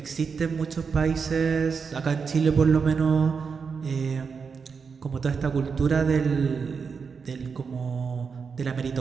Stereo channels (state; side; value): quieter; left; 5.6 dB